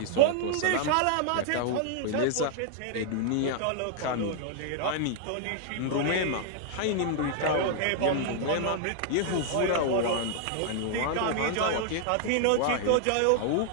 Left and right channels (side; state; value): both; different; correlation 0.00